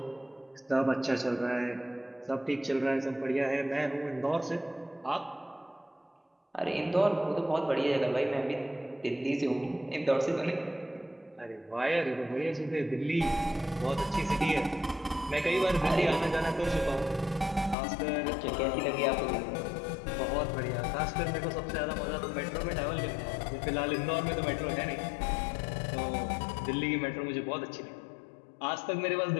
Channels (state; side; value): drops out; right; at 17.8 s